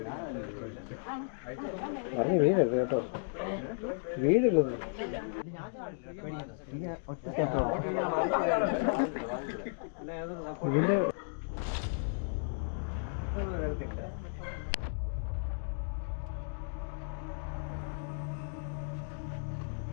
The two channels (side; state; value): right; silent; digital silence